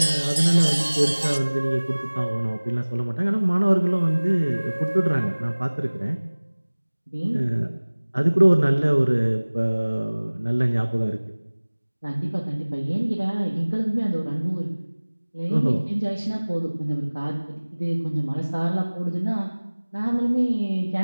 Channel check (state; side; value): inverted; both; correlation -1.00